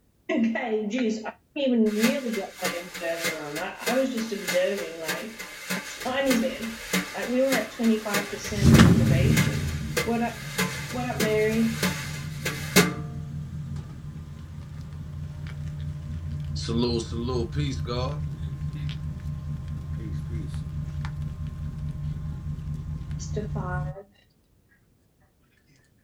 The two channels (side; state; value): both; identical; correlation 1.00